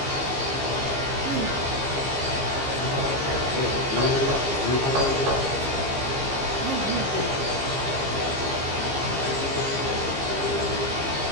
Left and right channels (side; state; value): left; late; 15 ms